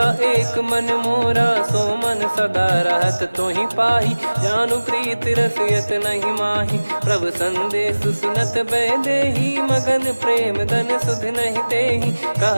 एक मन मोरा। सो मन सदा रहत तोहि पाहि, जानु प्रीत रसियत नहीं माहि। प्रभु संदेश सुनत भय देहि, मगन प्रेम धन सुध नहीं तेहि।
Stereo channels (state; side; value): inverted; both; correlation -1.00